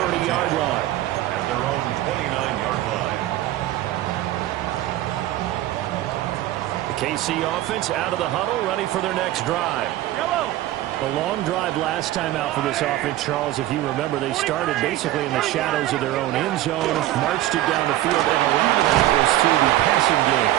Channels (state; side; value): quieter; left; 14.7 dB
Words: line. At their own 29-yard line. KC offense out of the huddle, ready for their next drive. A long drive last time out for this offense, Charles. If you remember, they started basically in the shadows of their own end zone, marched it down the field, and a lot of that was through the passing game.